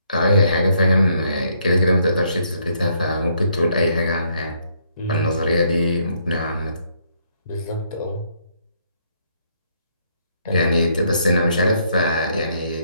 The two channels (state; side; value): inverted; both; correlation -0.71